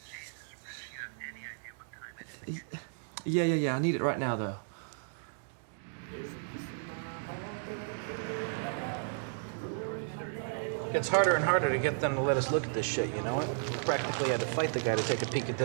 Yeah. I need it right now, though. It gets harder and harder to get them to let us look at this shit, you know it? We practically had to fight the guy to take a peek at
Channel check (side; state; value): left; silent; digital silence